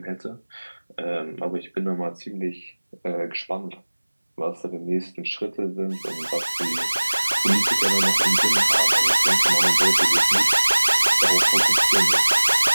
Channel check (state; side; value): inverted; both; correlation -1.00